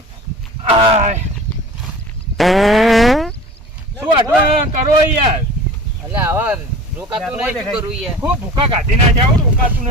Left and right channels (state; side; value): normal; both; correlation 0.40